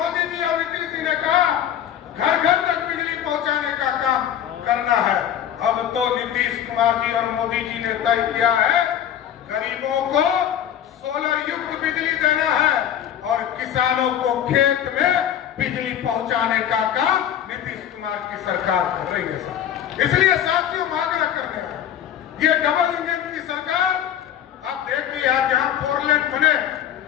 जी और नीतीश जी ने कहा घर-घर तक बिजली पहुंचाने का काम करना है। अब तो नीतीश कुमार जी और मोदी जी ने तय किया है गरीबों को सोलर युक्त बिजली देना है और किसानों को खेत में बिजली पहुंचाने का काम नीतीश कुमार की सरकार कर रही है। इसलिए साथियों आग्रह करने हैं, ये डबल इंजन की सरकार आप देखिए आज जहां 4 लेन बने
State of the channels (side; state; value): right; quieter; 10.2 dB